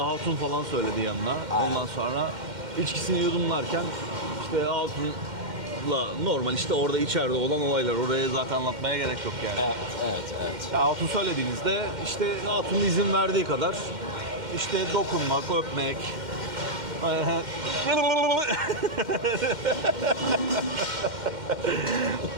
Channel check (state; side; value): late; left; 2.1 ms